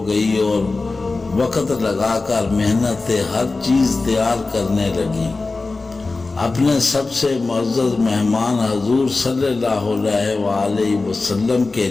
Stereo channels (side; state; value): right; quieter; 3.6 dB